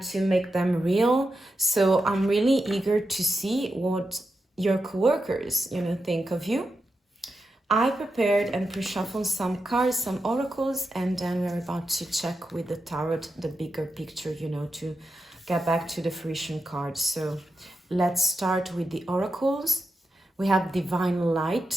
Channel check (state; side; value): normal; both; correlation 0.88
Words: to make them real. So I'm really eager to see what your coworkers, you know, think of you. I prepared and pre-shuffled some cards, some oracles, and then we're about to check with the tarot the bigger picture, you know, to get back to the fruition cards. So let's start with the oracles. We have divine